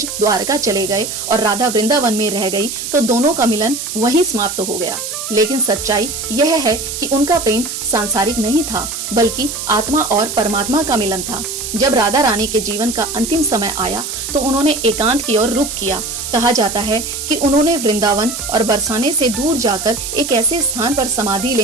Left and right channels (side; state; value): right; noise; hiss, 6 dB below the sound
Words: द्वारका चले गए और राधा वृंदावन में रह गई तो दोनों का मिलन वहीं समाप्त हो गया। लेकिन सच्चाई यह है कि उनका प्रेम सांसारिक नहीं था, बल्कि आत्मा और परमात्मा का मिलन था। जब राधा रानी के जीवन का अंतिम समय आया तो उन्होंने एकांत की ओर रुख किया। कहा जाता है कि उन्होंने वृंदावन और बरसाने से दूर जाकर एक ऐसे स्थान पर समाधि